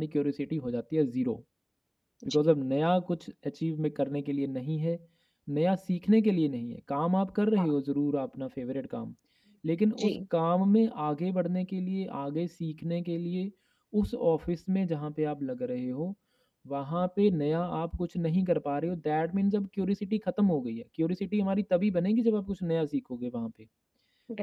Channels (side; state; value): both; identical; correlation 1.00